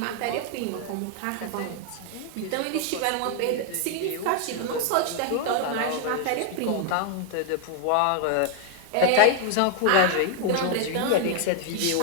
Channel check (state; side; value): different; both; correlation 0.00